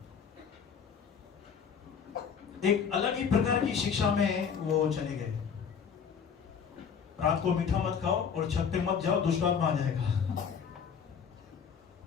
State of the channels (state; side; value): quieter; right; 6.9 dB